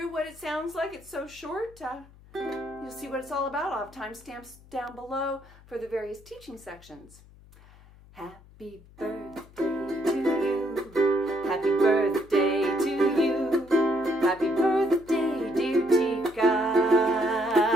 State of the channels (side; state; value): left; noise; hum, 24 dB below the sound